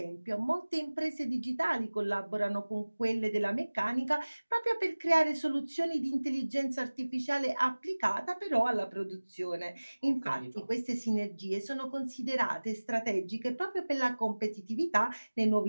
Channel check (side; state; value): both; inverted; correlation -1.00